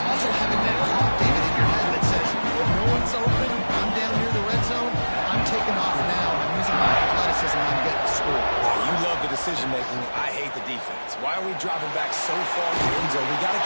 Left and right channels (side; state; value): both; inverted; correlation -1.00